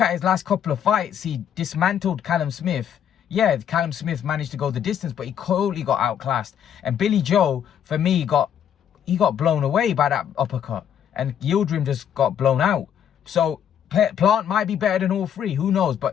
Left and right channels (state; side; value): quieter; right; 9.1 dB